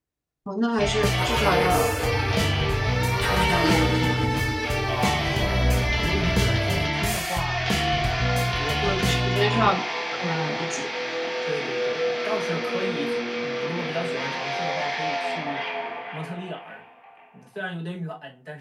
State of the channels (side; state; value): both; identical; correlation 1.00